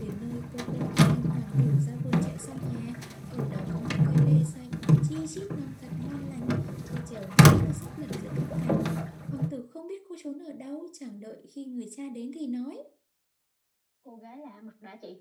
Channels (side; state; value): both; identical; correlation 1.00